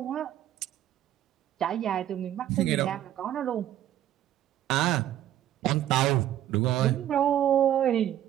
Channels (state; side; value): quieter; left; 11.9 dB